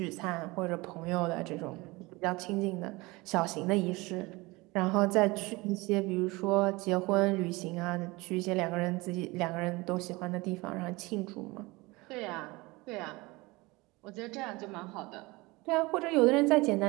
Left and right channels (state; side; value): quieter; left; 23.1 dB